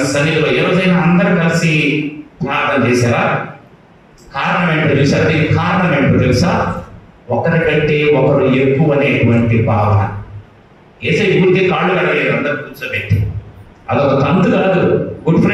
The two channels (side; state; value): both; identical; correlation 1.00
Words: సన్నిధిలో ఏ రోజైనా అందరూ కలిసి ప్రార్థన చేశారా? కారణం ఏంటో తెలుసా? దీనికి కారణం ఏంటో తెలుసా? ఒకరికంటే ఒకరు ఎక్కువ అనేటువంటి భావన. ఏసై గుడికి కాళ్ళు కడగలేదు అందరు కూర్చోబెట్టి, అదొక తంతు కాదు. గుడ్